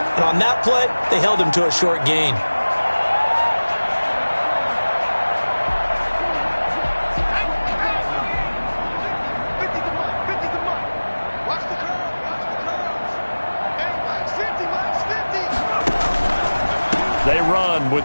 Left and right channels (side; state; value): both; inverted; correlation -1.00